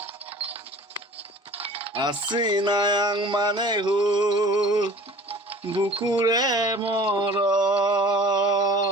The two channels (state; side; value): normal; both; correlation 0.45